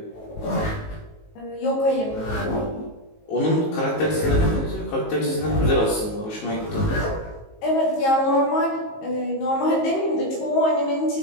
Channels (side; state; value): right; late; 19 ms